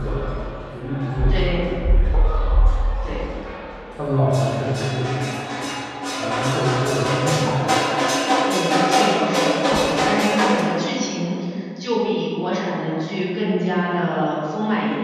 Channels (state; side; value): identical; both; correlation 1.00